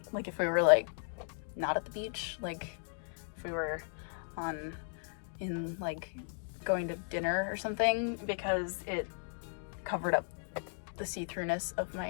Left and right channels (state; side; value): silent; right; 54 dB below the other